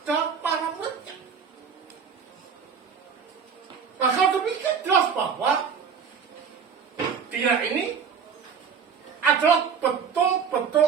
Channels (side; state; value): left; quieter; 6.6 dB